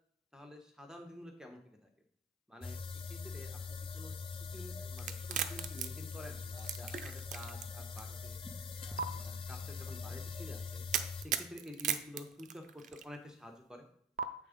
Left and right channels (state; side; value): normal; both; correlation 0.47